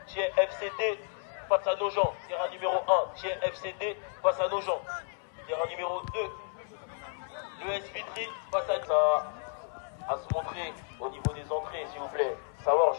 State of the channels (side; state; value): right; silent; 56 dB below the other